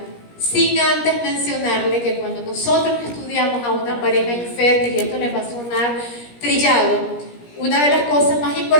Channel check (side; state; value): right; late; 17 ms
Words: sin antes mencionarle que cuando nosotros estudiamos a una pareja infértil, y esto les va a sonar trillado, una de las cosas más